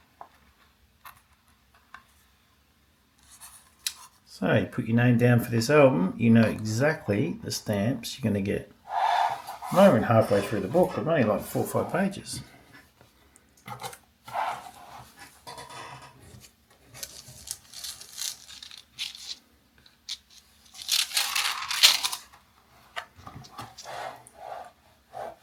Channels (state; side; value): identical; both; correlation 1.00